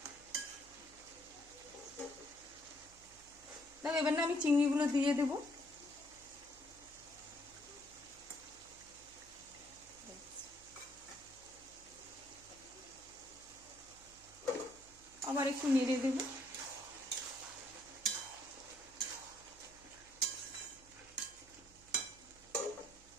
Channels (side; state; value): right; noise; hum, 23 dB below the sound